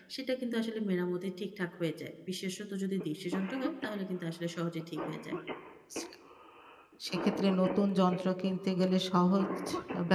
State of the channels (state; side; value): identical; both; correlation 1.00